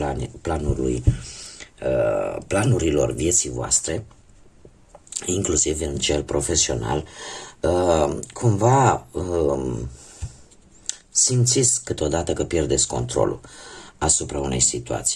planurilor vieții voastre, inclusiv în cel profesional, cumva simțiți câteodată că pierdeți controlul asupra unei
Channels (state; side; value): identical; both; correlation 1.00